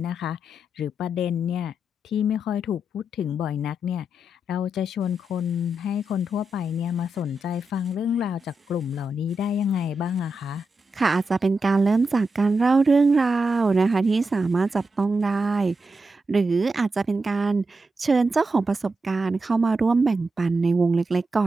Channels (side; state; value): both; normal; correlation 0.86